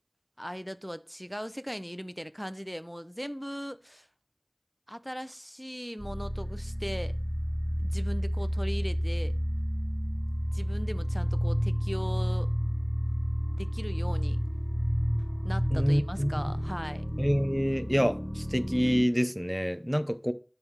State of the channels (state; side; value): identical; both; correlation 1.00